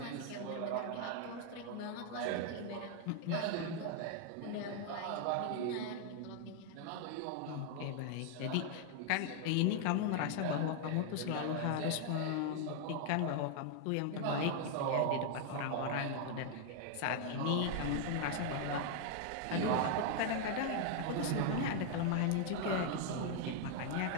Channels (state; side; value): different; both; correlation 0.00